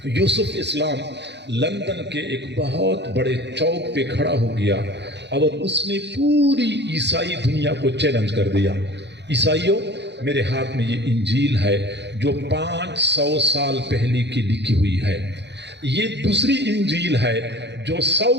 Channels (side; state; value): left; late; 0.50 ms